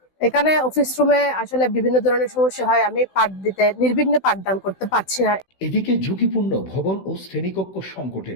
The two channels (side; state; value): right; late; 16 ms